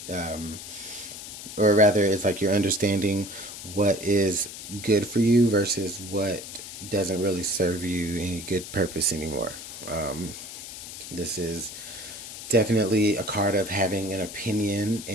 Or rather, it's like you're understanding what is good for you versus what doesn't really serve you any good purpose anymore. This is definitely a card of having an opinion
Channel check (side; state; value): left; noise; hiss, 11 dB below the sound